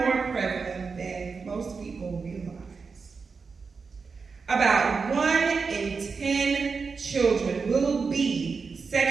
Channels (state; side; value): quieter; left; 5.0 dB